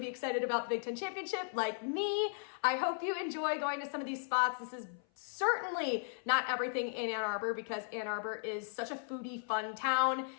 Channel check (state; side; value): silent; right; 54 dB below the other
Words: excited about the Big Ten Championship like me. I hope you enjoy going to some of these spots. This is certainly not everything in Ann Arbor because Ann Arbor is such a foodie, fun town.